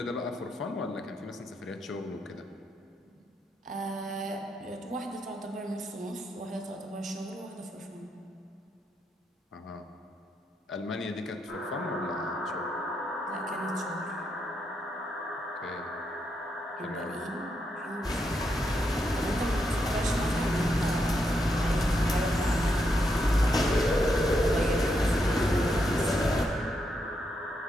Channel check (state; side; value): normal; both; correlation 0.81